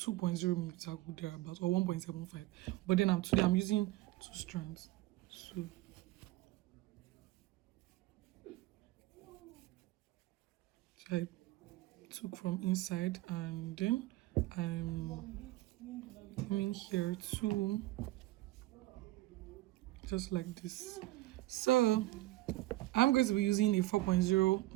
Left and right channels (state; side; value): quieter; left; 17.7 dB